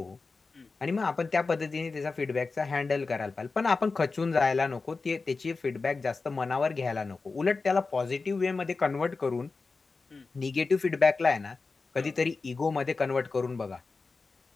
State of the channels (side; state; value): right; quieter; 4.1 dB